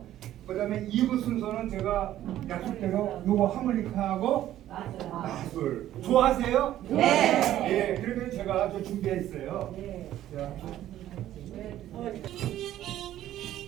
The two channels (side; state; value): left; quieter; 12.8 dB